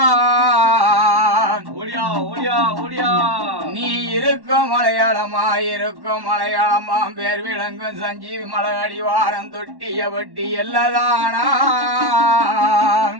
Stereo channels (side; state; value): left; late; 1.1 ms